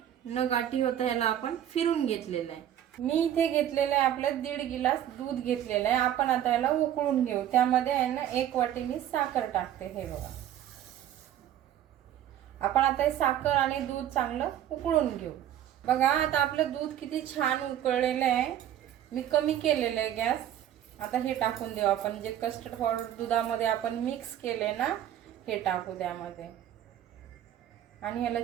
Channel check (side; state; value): left; quieter; 11.2 dB